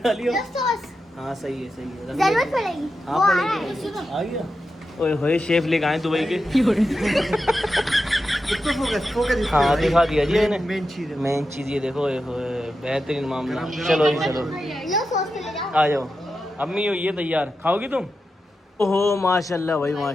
डाली हो। हाँ सही है सही है। जरूरत पड़ेगी। हाँ वो आ रहा है। पड़ेगी। आ गया। ओए होए शेफ लेके आए दुबई के। इसको फोकस हाँ दिखा दिया जी मैंने। मेन चीज है। मेन चीज़ ये देखो, ओए होए बेहतरीन मामला। गरम गरम। चलो जी चलो, लो सॉस पे ले जाओ। आ जाओ। अम्मी हो ये तैयार, खाओगी तुम? ओहो माशाल्लाह भाई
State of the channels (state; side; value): normal; both; correlation 0.89